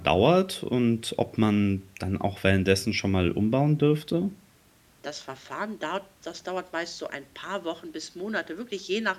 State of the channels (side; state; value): both; identical; correlation 1.00